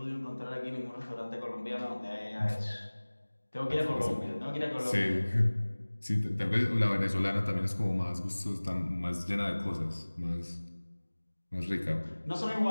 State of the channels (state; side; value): inverted; both; correlation -1.00